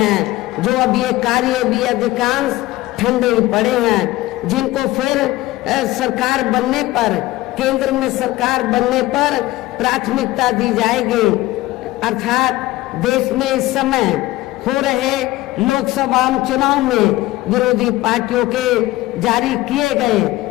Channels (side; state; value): right; quieter; 17.7 dB